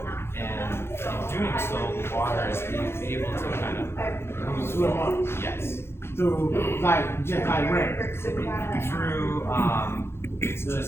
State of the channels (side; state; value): right; late; 0.12 ms